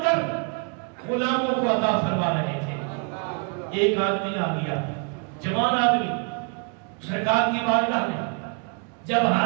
کر غلاموں کو عطا فرما رہے تھے۔ ایک آدمی آ گیا، جوان آدمی سرکار کی بارگاہ میں جب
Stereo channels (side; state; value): left; quieter; 35.3 dB